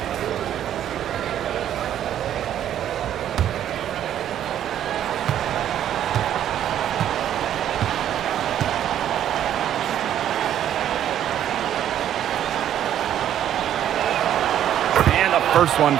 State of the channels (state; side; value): quieter; left; 10.7 dB